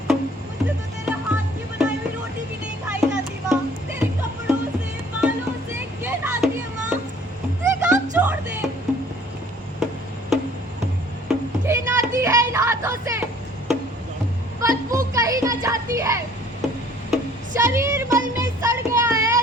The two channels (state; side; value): normal; both; correlation 0.55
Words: तो तेरे हाथ की बनाई हुई रोटी भी नहीं खाई जाती माँ। तेरे कपड़ों से, बालों से घिन आती है माँ। ये काम छोड़ दे। घिन आती है इन हाथों से, बदबू कहीं न जाती है। शरीर मल में सड़ गया है,